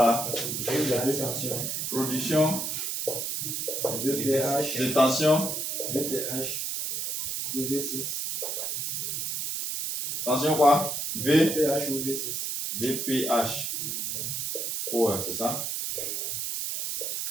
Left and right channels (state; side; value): noise; right; hiss, 2 dB below the sound